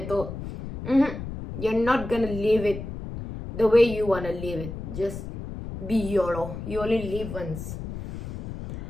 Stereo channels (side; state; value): left; noise; rumble, 8 dB below the sound